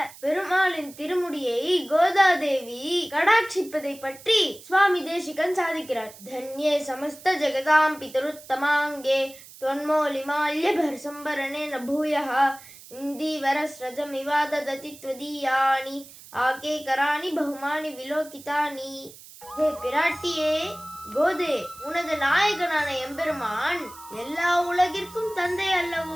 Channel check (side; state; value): right; noise; hiss, 19 dB below the sound